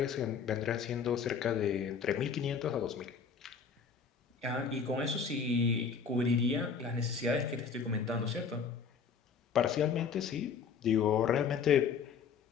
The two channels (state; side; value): quieter; right; 6.1 dB